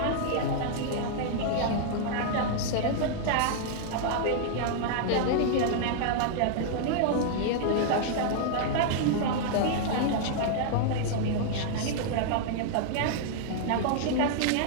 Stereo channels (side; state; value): both; different; correlation -0.01